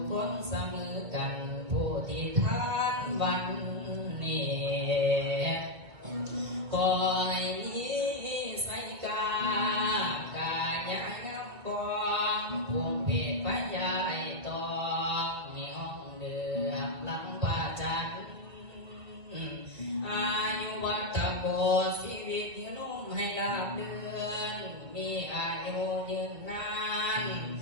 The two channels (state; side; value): late; left; 2.3 ms